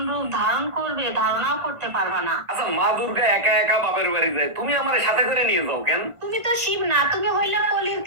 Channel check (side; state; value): left; late; 1.5 ms